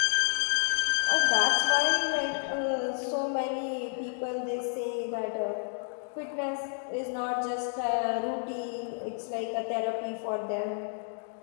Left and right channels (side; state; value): right; silent; 58 dB below the other